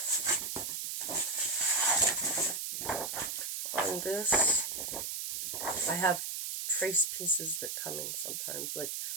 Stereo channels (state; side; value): noise; right; hiss, 3 dB below the sound